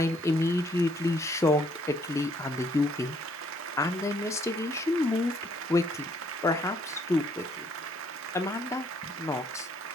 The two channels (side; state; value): both; normal; correlation 0.66